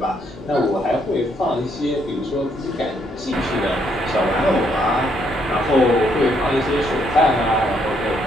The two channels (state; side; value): normal; both; correlation 0.72